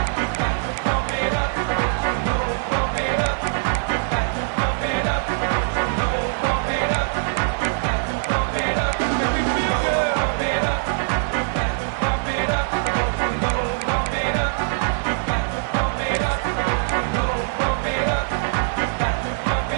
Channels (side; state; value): left; silent; digital silence